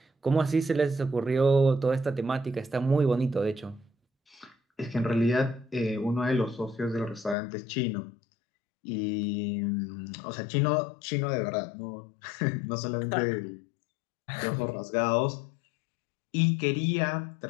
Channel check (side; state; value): right; drops out; at 7.4 s